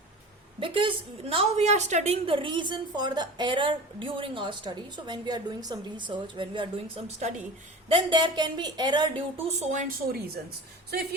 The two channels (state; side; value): normal; both; correlation 0.35